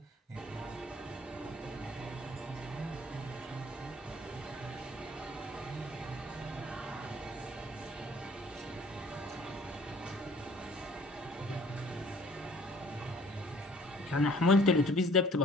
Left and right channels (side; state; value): both; normal; correlation 0.56